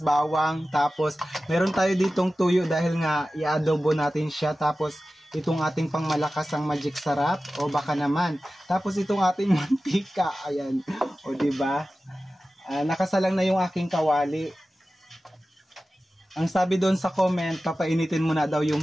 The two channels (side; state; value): both; normal; correlation 0.95